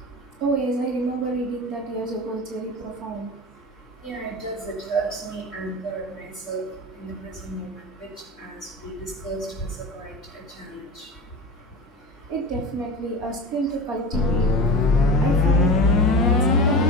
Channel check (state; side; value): normal; both; correlation 0.30